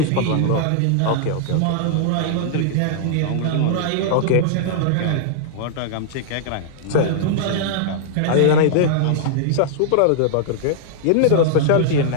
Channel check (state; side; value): different; both; correlation -0.01